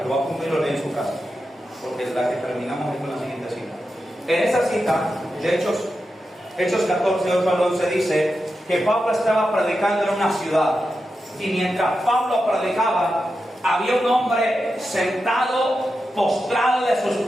lo va a apuntar y lo lee en su casa, porque la que terminamos es con la siguiente cita. En esa cita de Hechos 14, 8 al 11 dice que Pablo estaba predicando en una ciudad, y mientras Pablo predicaba, había un hombre sentado, postrado de sus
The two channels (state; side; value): normal; both; correlation 0.89